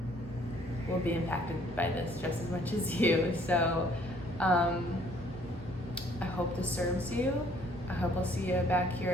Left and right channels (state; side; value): normal; both; correlation 0.61